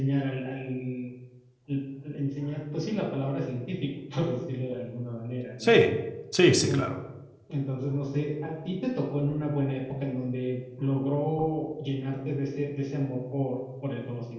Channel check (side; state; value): both; identical; correlation 1.00